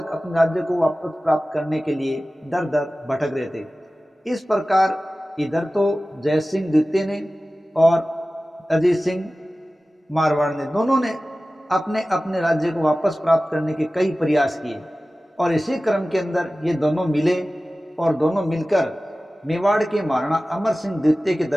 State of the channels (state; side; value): normal; both; correlation 0.96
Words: अपने राज्य को वापस प्राप्त करने के लिए दर दर भटक रहे थे। इस प्रकार इधर तो जय सिंह द्वितीय ने और अजीत सिंह मारवाड़ ने, दोनों ने अपने अपने राज्य को वापस प्राप्त करने के कई प्रयास किए और इसी क्रम के अंदर ये दोनों मिले और दोनों मिलकर मेवाड़ के महाराणा अमर सिंह द्वितीय के